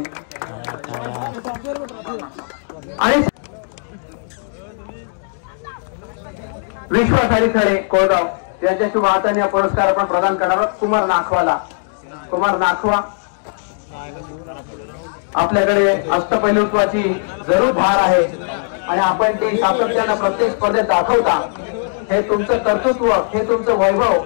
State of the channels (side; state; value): right; silent; digital silence